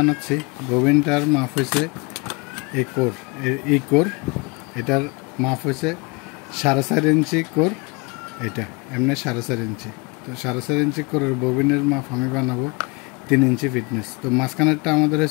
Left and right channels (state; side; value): quieter; right; 27.9 dB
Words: ববিনটার মাপ হয়েছে কোর। এটার মাপ হয়েছে 4.5 ইঞ্চি কোর। এটা এমনি 4.5 ইঞ্চি। তো 4.5 ইঞ্চি কোরের ববিনের মাপ আমি বানাবো 3 ইঞ্চি ফিটনেস। তো মাঝখানেরটা আমাদের